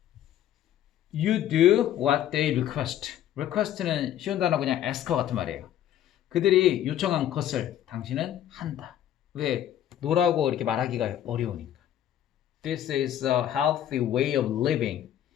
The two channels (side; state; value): right; quieter; 11.2 dB